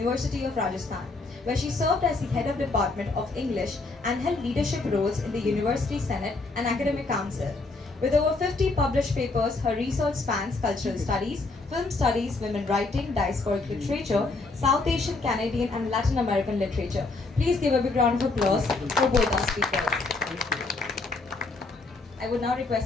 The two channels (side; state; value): right; quieter; 3.5 dB